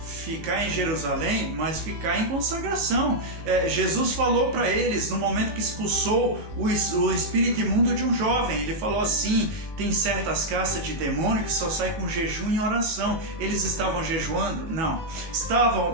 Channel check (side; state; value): left; late; 19 ms